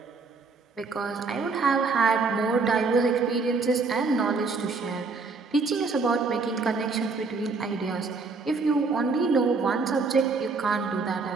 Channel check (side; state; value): left; quieter; 4.3 dB